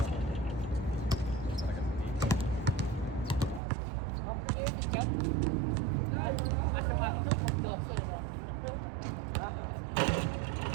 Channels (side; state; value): left; drops out; at 3.6 s